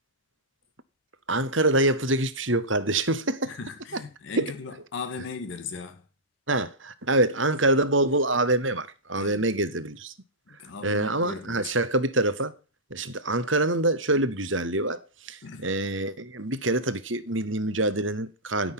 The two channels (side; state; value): both; normal; correlation -0.13